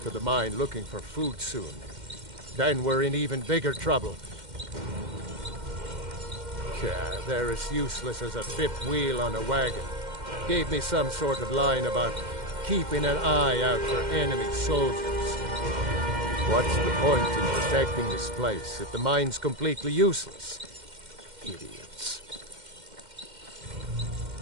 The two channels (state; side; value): late; left; 2.1 ms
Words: of the mine looking for food soon. Then we're in even bigger trouble. They're as useless as a fifth wheel on a wagon. Gave me some sort of line about keeping an eye out for enemy soldiers. What's the point in protecting this place if the mine's completely useless? Idiots.